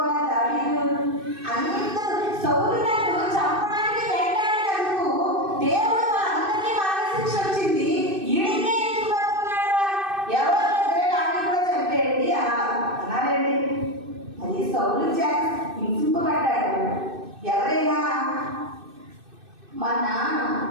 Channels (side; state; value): left; late; 2.6 ms